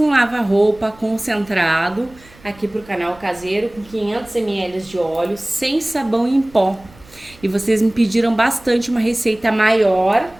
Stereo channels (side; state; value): right; noise; rumble, 25 dB below the sound